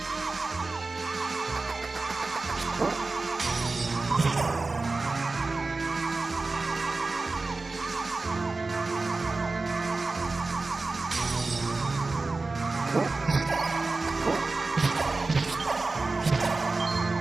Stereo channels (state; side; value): quieter; left; 3.6 dB